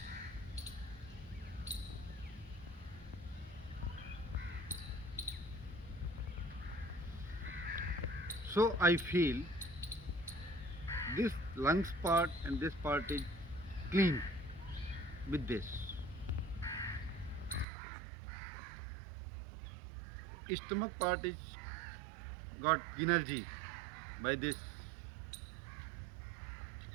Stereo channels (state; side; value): drops out; left; at 17.7 s